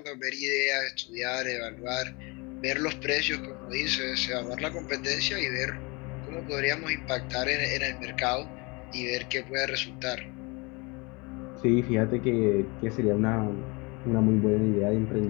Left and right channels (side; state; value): right; quieter; 27.8 dB